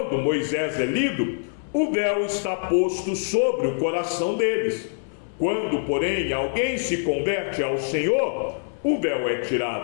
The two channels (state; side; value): silent; right; 62 dB below the other